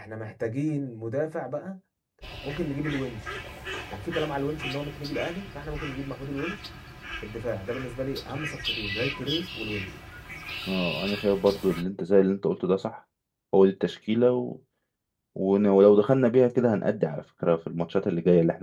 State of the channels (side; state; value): both; identical; correlation 1.00